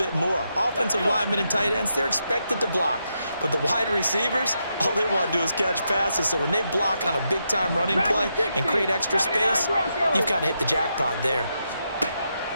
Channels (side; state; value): both; inverted; correlation -0.83